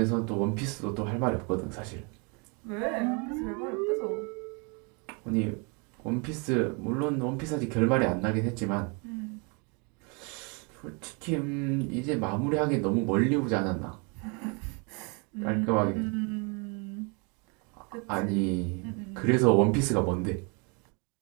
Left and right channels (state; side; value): quieter; left; 33.4 dB